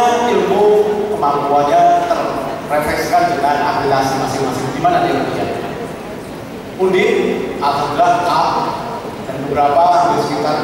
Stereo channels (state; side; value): identical; both; correlation 1.00